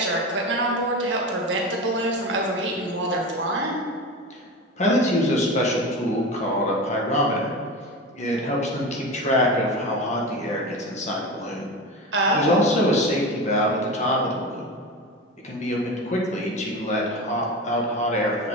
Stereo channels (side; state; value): both; normal; correlation 0.26